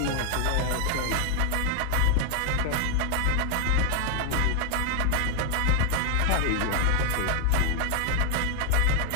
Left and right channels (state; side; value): different; both; correlation 0.01